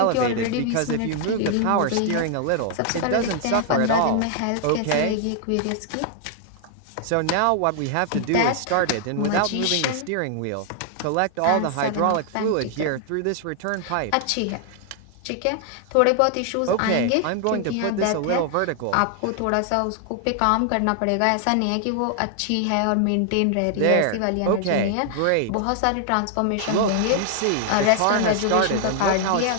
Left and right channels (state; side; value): different; both; correlation 0.00